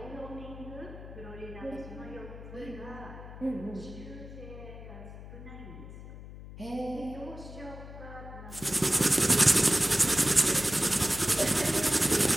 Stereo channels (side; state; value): left; noise; hum, 14 dB below the sound